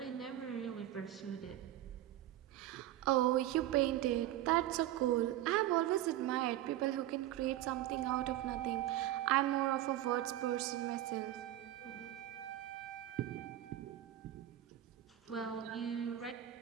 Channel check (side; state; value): left; quieter; 13.5 dB